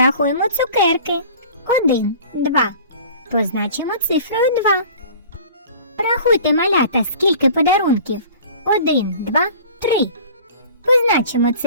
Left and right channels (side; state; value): both; inverted; correlation -0.45